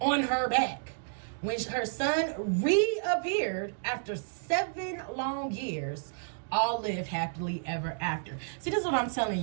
her back. When her son reappeared after 7 long years, all live happily ever after. See, this is what I'm telling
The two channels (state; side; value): silent; left; digital silence